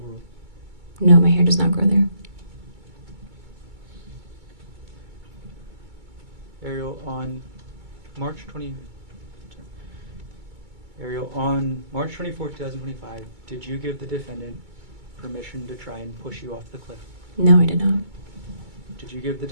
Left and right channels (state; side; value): late; left; 2.2 ms